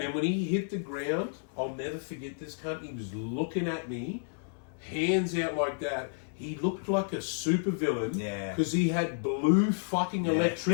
then when he hit the ground, I'll never forget this cunt. He was looking at me, hands out like that. He looked like a supervillain because he had blue fucking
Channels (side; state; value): right; silent; 57 dB below the other